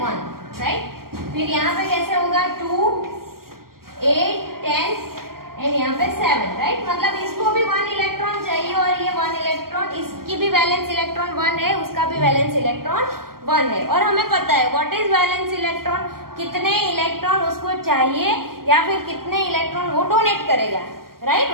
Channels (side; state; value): left; late; 0.92 ms